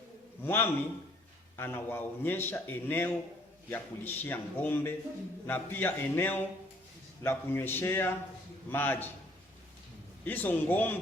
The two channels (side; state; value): both; normal; correlation 0.61